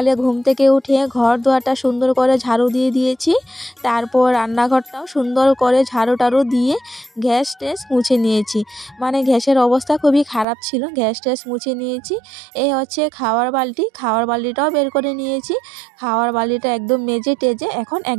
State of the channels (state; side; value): drops out; left; at 10.5 s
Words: ঘুম থেকে উঠে ঘর দুয়ারটা সুন্দর করে ঝাড়ু দিয়ে দিয়েছি। তারপর রান্নাঘরটাও সুন্দর করে ঝাড়ু টাড়ু দিয়ে গ্যাস ট্যাস মুছে নিয়েছি। মানে গ্যাসের অবস্থা খুবই খারাপ ছিল, গ্যাস ট্যাস মুছে নিয়েছি। এই হচ্ছে খাওয়ার বালতিটাও বের করে নিয়েছি। খাওয়ার বালতিটা একদম মেজে টেজে এখন